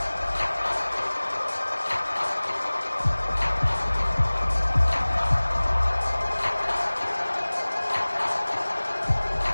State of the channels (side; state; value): both; inverted; correlation -1.00